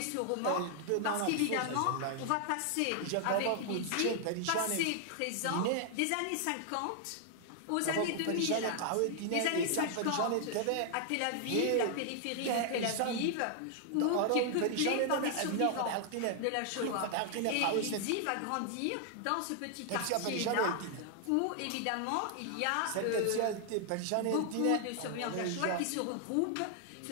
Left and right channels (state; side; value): different; both; correlation 0.00